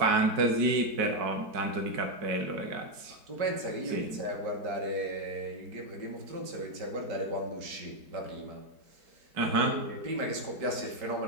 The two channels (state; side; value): late; left; 4.7 ms